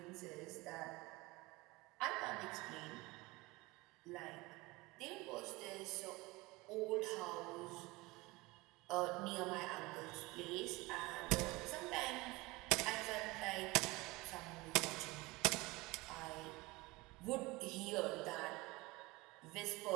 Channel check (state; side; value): quieter; left; 22.5 dB